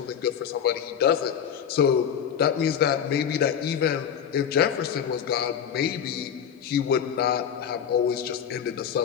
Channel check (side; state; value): right; quieter; 8.3 dB